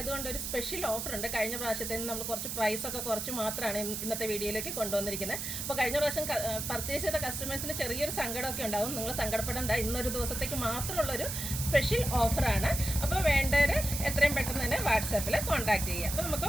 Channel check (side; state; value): right; noise; hiss, 4 dB below the sound